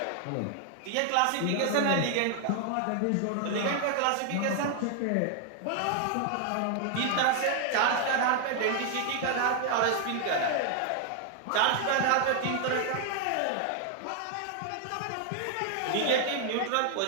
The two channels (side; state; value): both; different; correlation 0.00